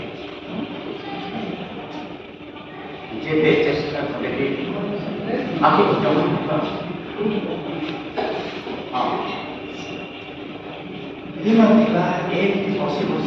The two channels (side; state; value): both; identical; correlation 1.00